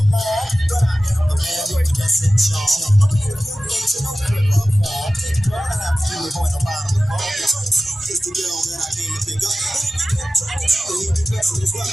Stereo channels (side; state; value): both; normal; correlation 0.95